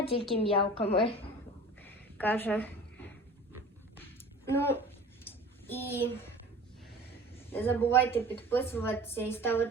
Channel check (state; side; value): normal; both; correlation 0.41